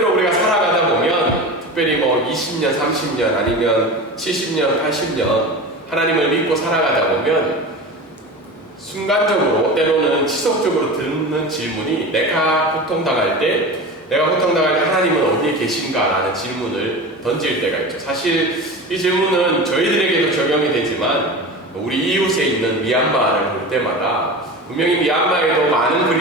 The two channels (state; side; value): normal; both; correlation 0.30